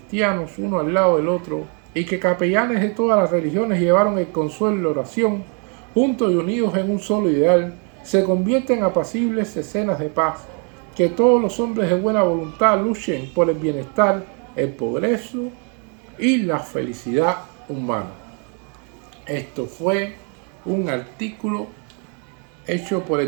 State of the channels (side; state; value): left; quieter; 38.5 dB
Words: uno al lado del otro, y que capellanes de todas las religiones llevaron el consuelo y la oración, juntos y unidos en un solo ideal, se convierten en apacibles escenas de paz, que todos los hombres de buena voluntad luchen por el bienestar, el progreso y la felicidad humana. Esto fue un artículo hecho por